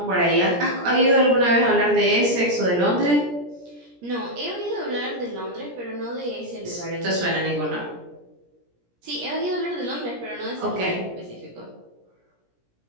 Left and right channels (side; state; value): left; late; 17 ms